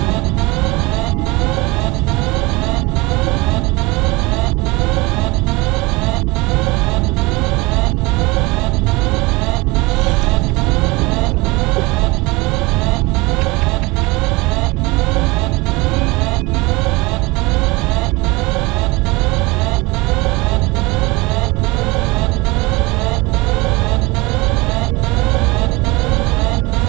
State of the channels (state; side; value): quieter; left; 23.6 dB